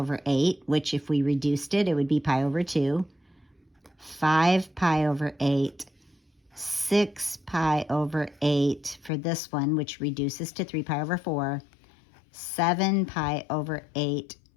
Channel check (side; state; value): right; drops out; at 9.1 s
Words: 8, which if we reduced it, it would be pi over 2. 5 pi over 8, 6 pi over 8 for this one, which reduces to 3 pi over 4, 7 pi over 8,